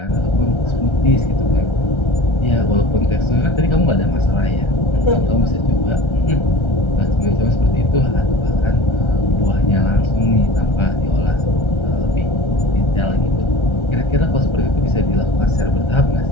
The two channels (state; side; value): late; right; 1.3 ms